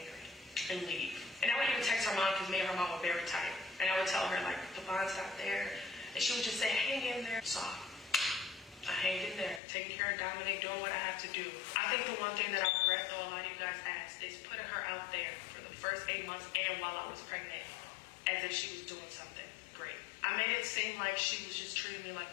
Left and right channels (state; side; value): drops out; right; at 9.6 s